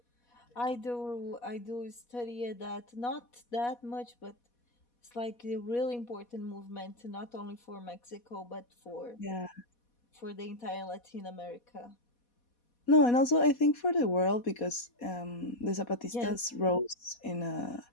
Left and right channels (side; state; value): right; late; 4.2 ms